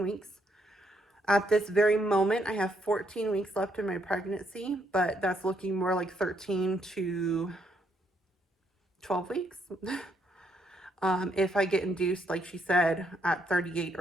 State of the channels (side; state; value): both; normal; correlation 0.74